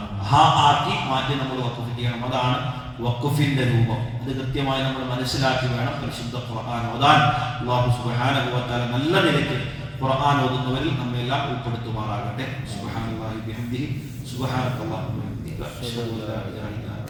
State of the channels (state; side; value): identical; both; correlation 1.00